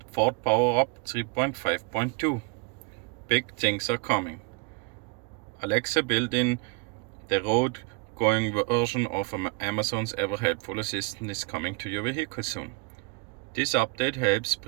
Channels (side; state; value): left; quieter; 30.7 dB